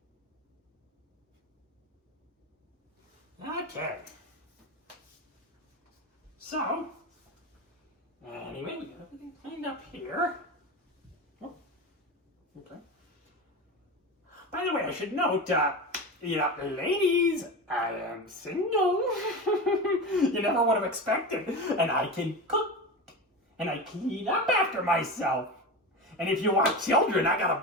Okay. So, anyway, we got everything cleaned up here. Oh, okay. By the way, I should note, ladies, I am single. You never would have expected. And I can cook. And I clean up after myself. And if you want children, I got a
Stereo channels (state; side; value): normal; both; correlation 0.24